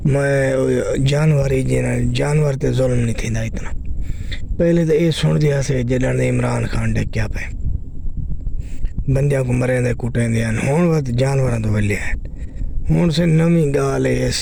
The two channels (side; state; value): both; identical; correlation 1.00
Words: جانور تے ظلم نہیں تھیندا اتنا۔ پہلے تو یہ سن دیا سے جدن عمران خان ڈکیا پہ بندیاں کو مرے دے کٹے دے ہون وقت جانوراں تو ویلے ہیں۔ ہون سے نویں گال ہے